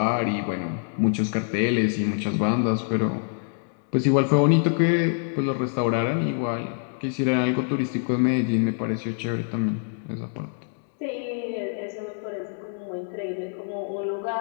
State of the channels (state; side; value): silent; right; 61 dB below the other